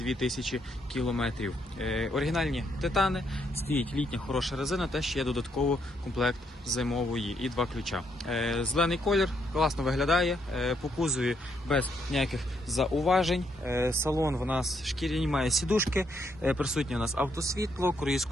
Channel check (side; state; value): both; normal; correlation 0.75